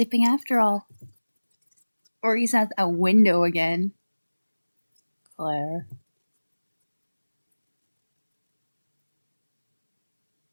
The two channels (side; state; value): both; inverted; correlation -1.00